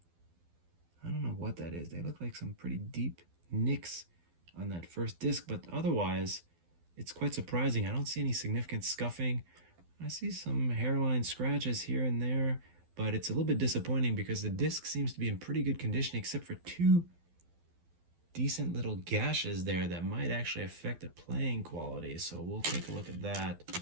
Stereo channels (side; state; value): left; late; 12 ms